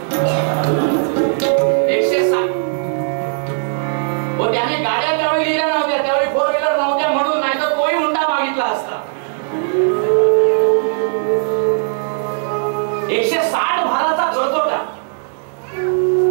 160. हो, त्याने गाड्या त्यावेळी लिहिल्या नव्हत्या, त्यावेळी 4 व्हीलर नव्हत्या म्हणून, नाही तर तोही हुंडा मागितला असता. 160 भाराचा कर्ज होता.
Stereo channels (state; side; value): silent; left; digital silence